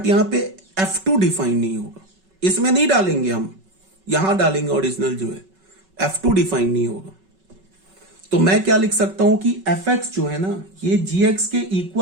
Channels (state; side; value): late; left; 5.3 ms